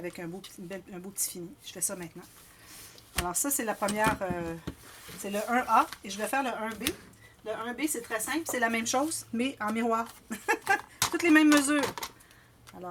un beau petit fini. Je fais ça maintenant. Alors, ça, c'est la première... c'est le 1A. Et je vais faire le 1B. Le 1B, c'est très simple. C'est la même chose, mais en miroir. Toutes les mêmes mesures.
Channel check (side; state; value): both; identical; correlation 1.00